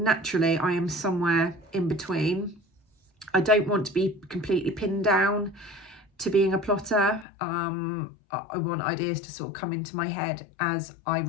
I am somewhere in between. I don't want to be completely pinned down to being a plotter. I want ideas to sort of come into my head as I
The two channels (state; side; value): drops out; right; at 7.2 s